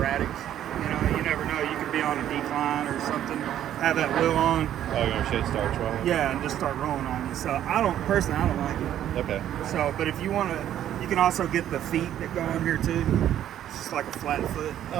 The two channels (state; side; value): quieter; left; 11.2 dB